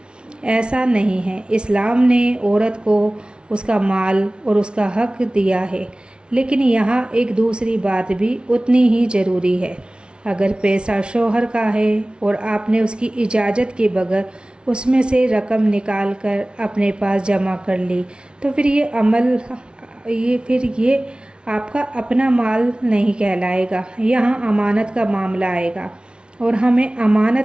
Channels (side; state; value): left; late; 0.056 ms